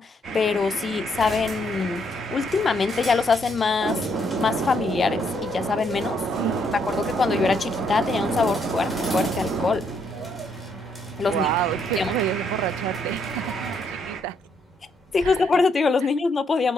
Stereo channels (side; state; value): both; normal; correlation 0.73